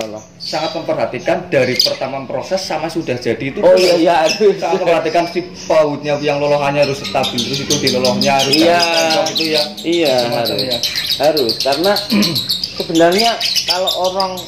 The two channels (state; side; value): identical; both; correlation 1.00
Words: sangat memperhatikan dari pertama proses sama sudah jadi itu. Oh iya, sangat memperhatikan si pautnya yang lolohannya harus stabil, terus itu di lolohnya harus itu ya. Iya, harus karena sebenarnya kalau orang